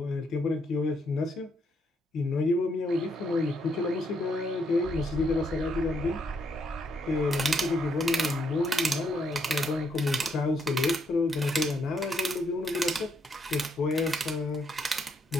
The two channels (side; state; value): both; normal; correlation 0.75